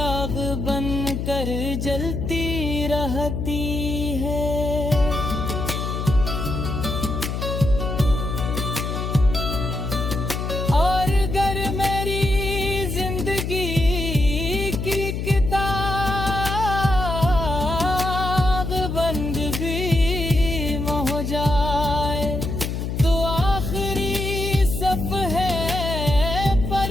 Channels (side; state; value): left; noise; hum, 3 dB below the sound